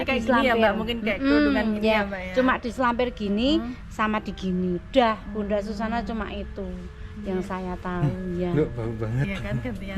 kayak diselampir gini ya Mbak, mungkin kayak kerudungan gini ya Mbak ya. Cuma diselampir gini sama di gini. Udah Bunda Susana cuma itu yang saya tahu ya. Loh, bau banget. Iya kan, gantian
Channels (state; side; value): identical; both; correlation 1.00